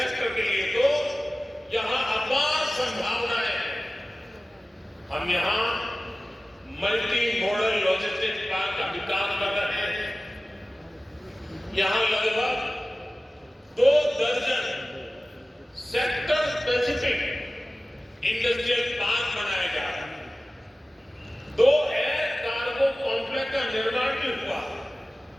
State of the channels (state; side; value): normal; both; correlation 0.97